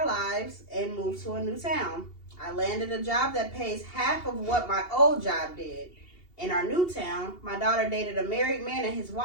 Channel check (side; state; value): right; late; 2.8 ms